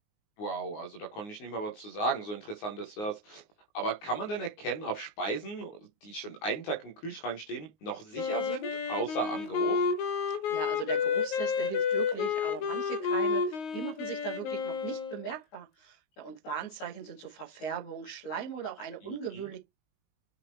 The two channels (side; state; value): right; late; 19 ms